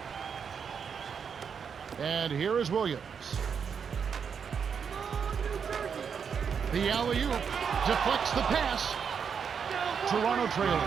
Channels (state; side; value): quieter; left; 6.7 dB